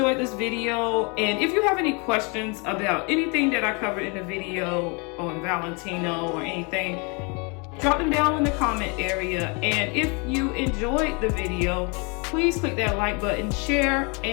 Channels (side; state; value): right; quieter; 32.3 dB